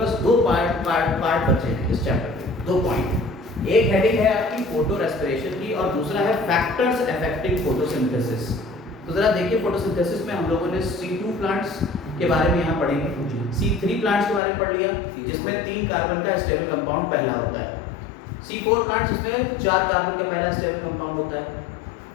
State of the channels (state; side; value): drops out; right; at 14.4 s